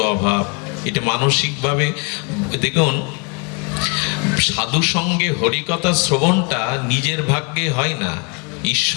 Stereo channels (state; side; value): quieter; right; 33.8 dB